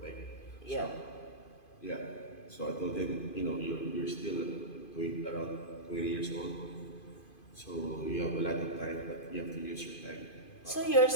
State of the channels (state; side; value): late; right; 2.5 ms